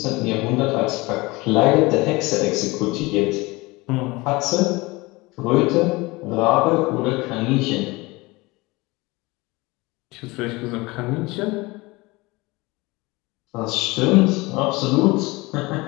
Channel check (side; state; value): right; quieter; 23.0 dB